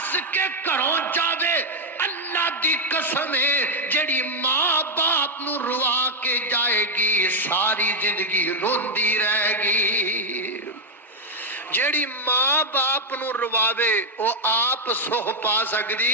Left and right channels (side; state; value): both; normal; correlation 0.02